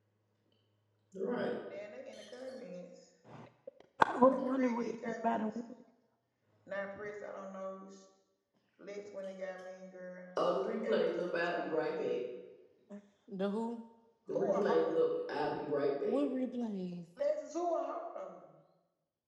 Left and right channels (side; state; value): both; identical; correlation 1.00